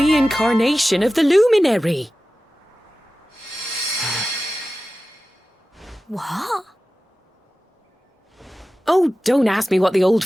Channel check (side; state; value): both; normal; correlation 0.95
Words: of the Luminary. What? Oh, don't ask me what the old